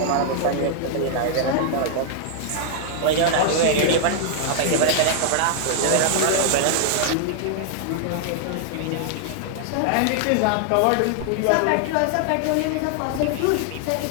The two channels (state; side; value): different; both; correlation -0.01